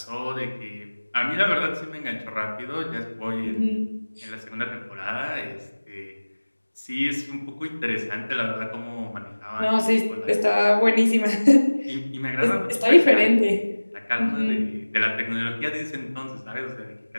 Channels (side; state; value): both; inverted; correlation -1.00